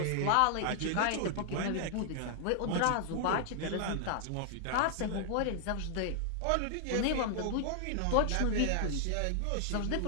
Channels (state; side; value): different; both; correlation -0.01